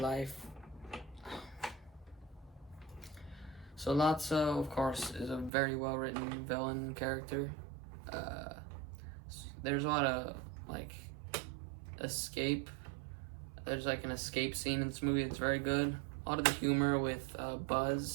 So Lotso, of course, is a very well-written villain character. There's a lot of, like, escape. There's, like, an escape scene in this movie that's very good. A lot of the humor with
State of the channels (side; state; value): left; drops out; at 5.5 s